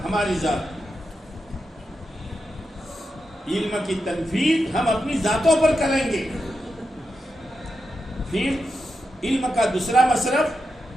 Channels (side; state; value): both; normal; correlation 0.87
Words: ہماری ذات. علم کی تنفیذ ہم اپنی ذاتوں پر کریں گے. پھر علم کا دوسرا مصرف